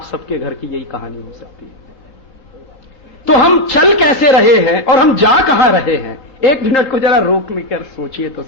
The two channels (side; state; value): right; late; 4.1 ms